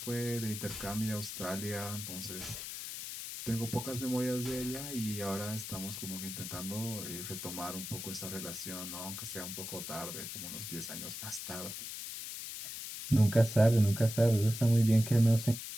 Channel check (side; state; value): left; noise; hiss, 7 dB below the sound